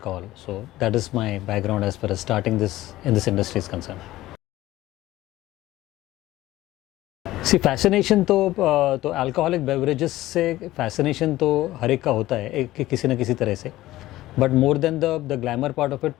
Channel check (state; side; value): quieter; right; 16.2 dB